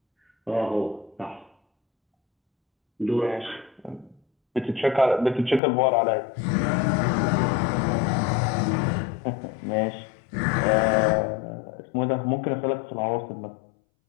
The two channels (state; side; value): drops out; right; at 5.6 s